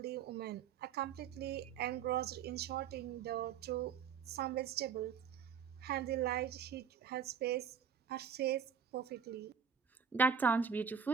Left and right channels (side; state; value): left; quieter; 7.3 dB